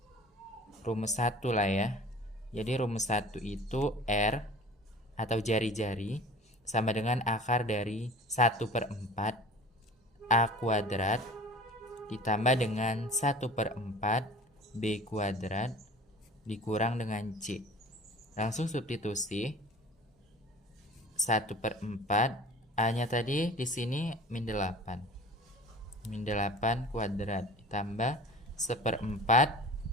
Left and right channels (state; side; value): normal; both; correlation 0.42